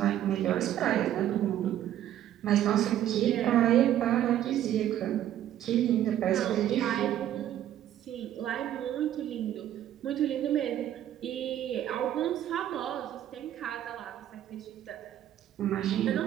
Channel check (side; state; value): left; quieter; 11.6 dB